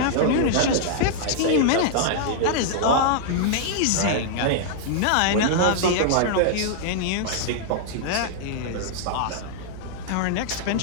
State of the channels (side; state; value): both; different; correlation -0.01